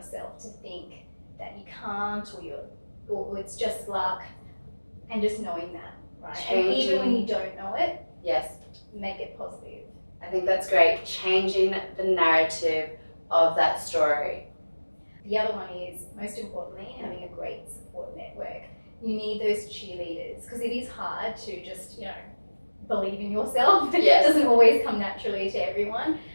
to think that you can't or you're or it's just luck, and just knowing that, right? Changing. And even when you don't know it, Yes. make it positive. I think that's great. Changing the narrative of that story. The other one is, most importantly, having a great support network. You need those cheerleaders, because it is hard to just, believe in yourself. Yes. It doesn't always come naturally to everyone.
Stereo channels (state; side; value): inverted; both; correlation -1.00